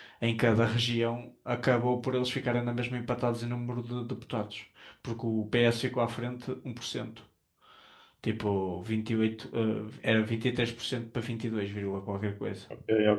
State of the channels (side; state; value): both; identical; correlation 1.00